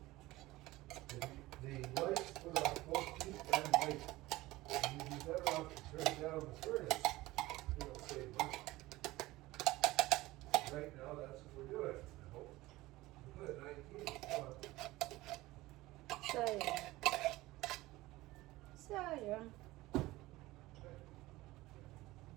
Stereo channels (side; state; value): left; quieter; 18.6 dB